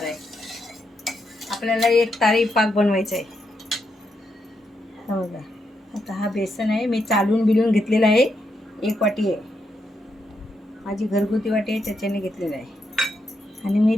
आहे. आपल्याला एक तारी पाक बनवायचा आहे. बघा, आता हा बेसन आहे, मी चालून बिलून घेतलेला आहे, 1 वाटी आहे, माझी घरगुती वाटी आहे त्याच्याने घेतलेला आहे. आणि मी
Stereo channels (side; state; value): both; normal; correlation 0.81